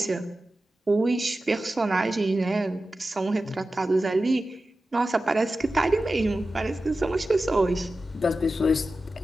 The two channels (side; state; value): both; normal; correlation 0.94